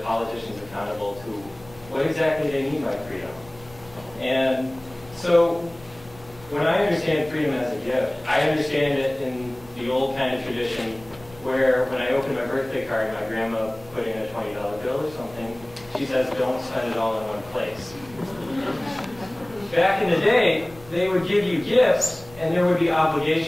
politicians accountable to what exactly they mean by freedom. And so when I understand freedom as a gift, I understand it in the old kind of tradition where when I open my birthday card, my grandma put in a $20 bill or something, she says, don't spend it all in one place. Back in the day, they would give you gifts and there would be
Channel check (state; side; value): noise; left; rumble, 22 dB below the sound